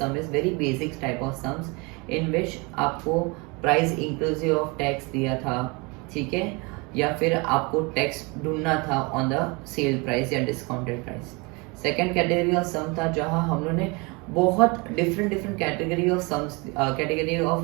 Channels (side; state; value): left; quieter; 28.3 dB